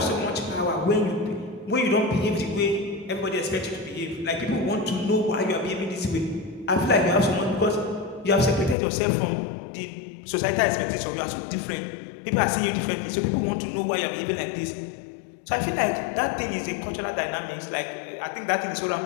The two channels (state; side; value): drops out; right; at 8.8 s